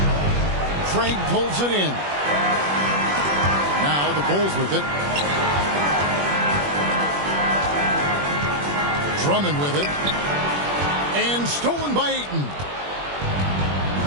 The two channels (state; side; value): late; left; 21 ms